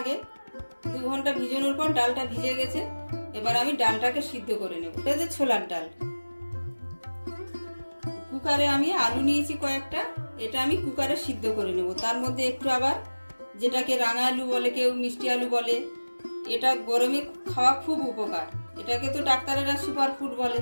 2 ঘন্টা ভিজানোর পর ডালটা ভিজে গেছে। এবার আমি ডালটাকে সিদ্ধ করে নেব। এটা যে ছোলার ডাল। কুকারে আমি আলু নিয়েছি কয়েকটা, এটা আমি কুকারে সিদ্ধ করে নেব। তার মধ্যে একটু আবার যেটাকে রাঙা আলু বলে, কেউ মিষ্টি আলু বলে, এটা গরমে খাওয়া খুব উপকার। এটাকে তো ডাক্তারেরা সুপার ফুড বলে।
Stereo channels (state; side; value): inverted; both; correlation -1.00